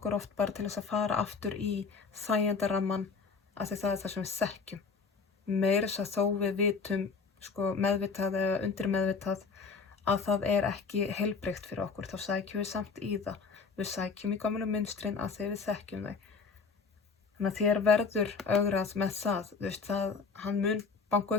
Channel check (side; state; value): right; quieter; 5.0 dB